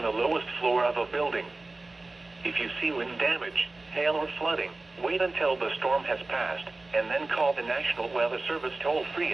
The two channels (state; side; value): quieter; left; 3.2 dB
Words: the lowest floor of a building. If you see wind damage, hail or flooding, wait until the storm has passed, and then call the National Weather Service toll-free